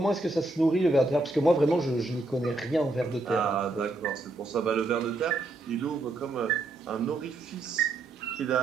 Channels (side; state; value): left; quieter; 3.0 dB